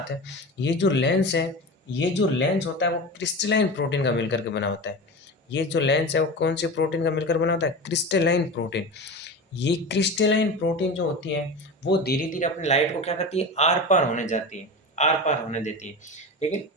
ये जो लेंस है, ये जो लेंस होता है वो क्रिस्टलाइन प्रोटीन का मिलकर के बना होता है। ये जो लेंस है वो कौन से प्रोटीन का मिलकर बना होता है, क्रिस्टलाइन प्रोटीन। ये क्रिस्टलाइन प्रोटीन जो होती है वो धीरे धीरे अपनी लाइट को क्या करती है, आर पार होने जाती है, आर पार होने देती है। लेकिन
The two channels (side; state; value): both; normal; correlation 0.28